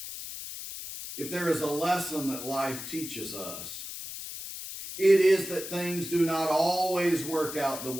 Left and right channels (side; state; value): left; noise; hiss, 9 dB below the sound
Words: If there is a lesson that life teaches us, it is that things do not always work out the